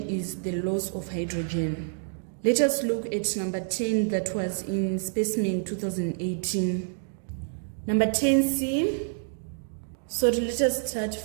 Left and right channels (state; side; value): silent; left; digital silence